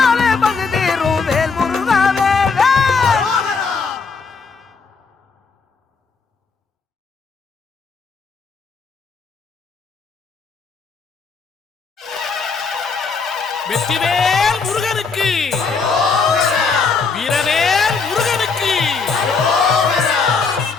பசி தீரும் வேல் முருகா வேல் வேல். வெற்றிவேல் முருகனுக்கு, வீரவேல் முருகனுக்கு.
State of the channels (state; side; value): quieter; right; 4.9 dB